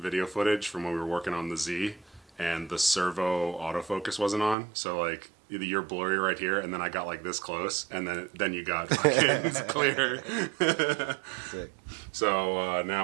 footage from when we were working on the Z, and the servo autofocus wasn't on. So like either you're blurry right here, and then I got like this close, and then you got fucking clear. Sick. So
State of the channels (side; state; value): left; drops out; at 4.5 s